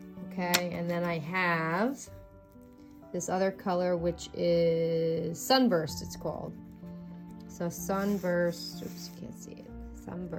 Okay, and then I have this other color, which is Sunburst, it's called. So Sunburst, oops, you can't see it.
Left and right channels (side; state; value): both; identical; correlation 1.00